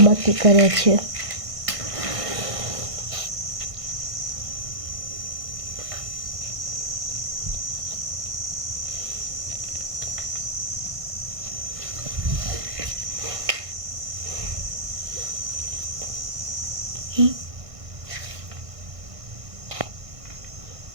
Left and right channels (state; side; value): late; left; 1.5 ms